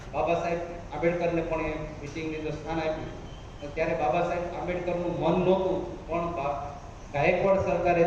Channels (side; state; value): both; identical; correlation 1.00